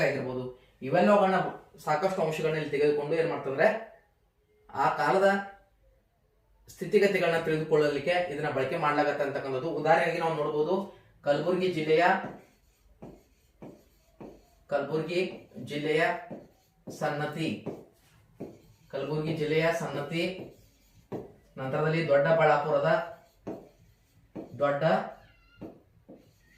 ಆಗಿರ್ಬೋದು, ಇವೆಲ್ಲವುಗಳನ್ನ ಸಾಕಷ್ಟು ಅಂಶಗಳನ್ನ ಇಲ್ಲಿ ತೆಗೆದುಕೊಂಡು ಏನ್ ಮಾಡ್ತಂದ್ರೆ ಆ ಕಾಲದ ಸ್ಥಿತಿಗತಿಗಳನ್ನ ತಿಳಿದುಕೊಳ್ಳಲಿಕ್ಕೆ ಇದನ್ನ ಬಳಕೆ ಮಾಡ್ಲಾಗತ್ತೆ ಅಂತಕ್ಕಂಥದ್ದು. ಉದಾಹರಣೆಗೆ ನಾವು ನೋಡಬಹುದು, ಕಲಬುರಗಿ ಜಿಲ್ಲೆಯ ಸನ್ನತಿ, ನಂತರದಲ್ಲಿ ದೊಡ್ಡಬಳ್ಳಾಪುರದ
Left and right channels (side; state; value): both; identical; correlation 1.00